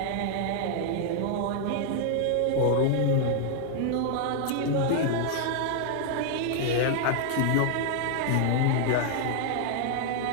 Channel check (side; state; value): both; different; correlation 0.00